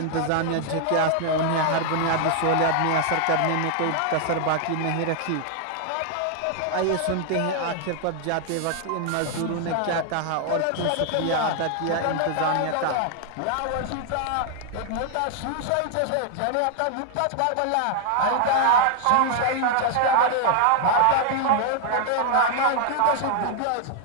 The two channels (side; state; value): both; different; correlation 0.00